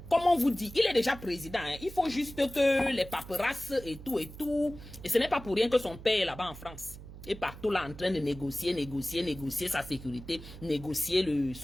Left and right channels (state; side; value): noise; right; hum, 15 dB below the sound